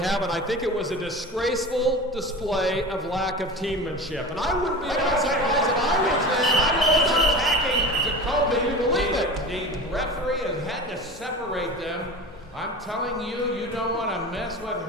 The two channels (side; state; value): both; normal; correlation 0.32